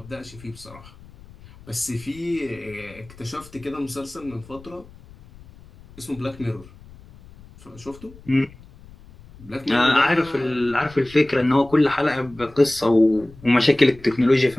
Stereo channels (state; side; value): noise; left; rumble, 22 dB below the sound